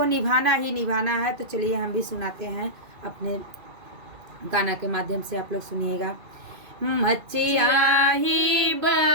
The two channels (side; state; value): left; late; 2.5 ms